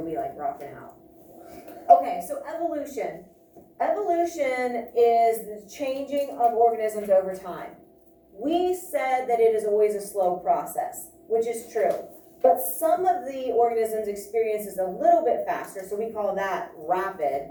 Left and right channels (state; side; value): identical; both; correlation 1.00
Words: be like rocking out. Okay, so evolution. Evolution is the changing of organisms over time. We said that it is always a slow process, which is true. But some of the organisms experience is a little bit faster, so we call that rapid.